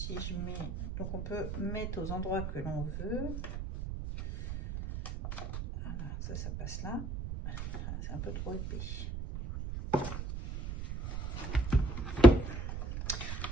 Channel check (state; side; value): noise; right; rumble, 5 dB below the sound